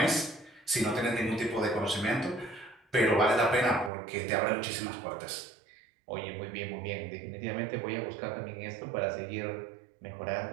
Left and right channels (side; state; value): left; drops out; at 3.9 s